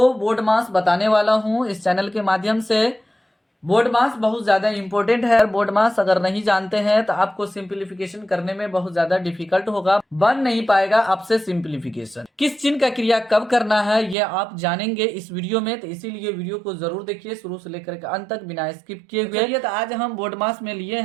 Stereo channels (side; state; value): left; drops out; at 14.2 s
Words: बोर्ड मास बताने वाला हूं इस चैनल के माध्यम से। बोर्ड मास बहुत ज़्यादा इंपॉर्टेंट है। बोर्ड मास अगर नहीं जानते हैं तो आपको सिंप्लीफिकेशन करने में बहुत ज़्यादा डिफिकल्ट होगा, बन नहीं पाएगा आपसे सिंप्लीफिकेशन। किस चिन्ह का क्रिया कब करना है ये आप जानेंगे इस वीडियो में, तो इसीलिए वीडियो को जरूर देखिए शुरू से लेकर के अंत तक बिना स्किप किए हुए। तो आज हम बोर्ड मास में लिए